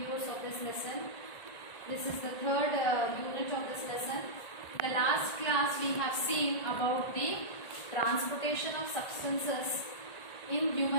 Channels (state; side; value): late; right; 1.5 ms